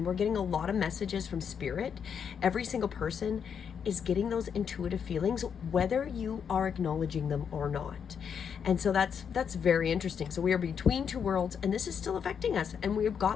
we're getting a lot of messages from spirit. Every single person is getting those intuitive feelings, whether you are acknowledging them or not. And so that's very interesting. So we are between two worlds, and this is still affecting us, and we've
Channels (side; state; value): right; quieter; 7.3 dB